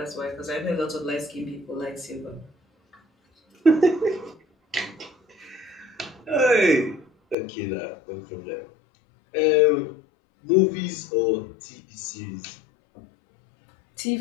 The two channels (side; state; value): right; drops out; at 7.4 s